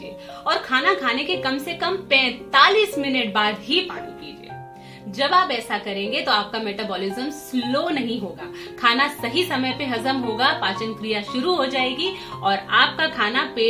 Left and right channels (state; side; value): identical; both; correlation 1.00